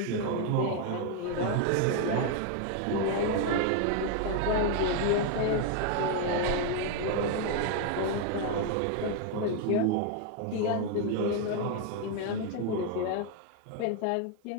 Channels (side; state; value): both; different; correlation 0.00